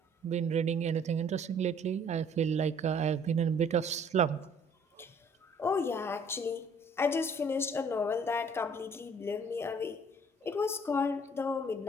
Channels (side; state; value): both; normal; correlation 0.57